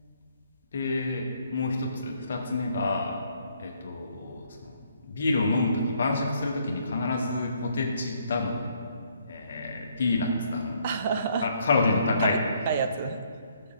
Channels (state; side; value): inverted; both; correlation -0.68